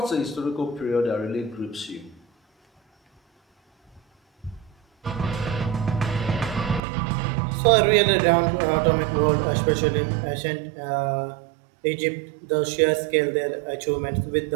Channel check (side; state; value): left; drops out; at 6.8 s